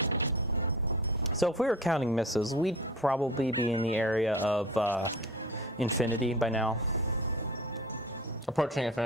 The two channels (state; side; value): normal; both; correlation 0.38